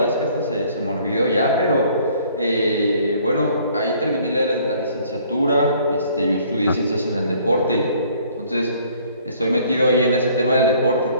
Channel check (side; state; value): both; inverted; correlation -0.58